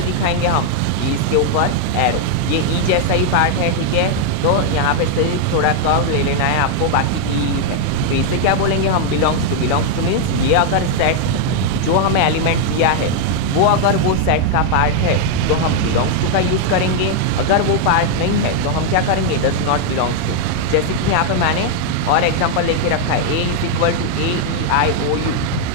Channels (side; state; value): both; different; correlation 0.00